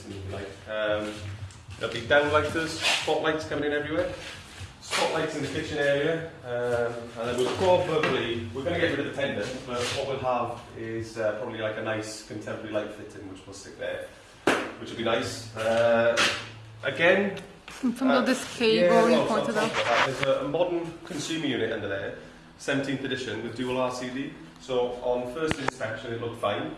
if you like. There'll be downlighters, spotlights coming in everywhere. Spotlights in the kitchen area, and then we're going to get rid of the pendant, but what we'll have is probably like a nice contemporary light fitting, which we'll stick there, which will be nice. Again, something of this cable you pointed out. There's a modern consumer unit under there, 17th edition with dual RCD. So on first inspection it looked fine,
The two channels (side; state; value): both; identical; correlation 1.00